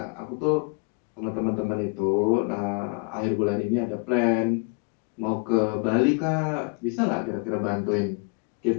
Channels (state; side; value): quieter; right; 34.5 dB